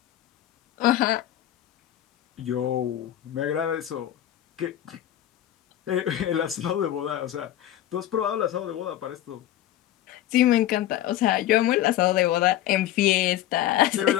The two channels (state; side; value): quieter; right; 12.9 dB